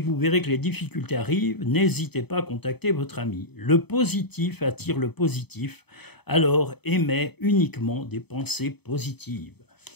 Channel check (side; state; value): right; late; 0.98 ms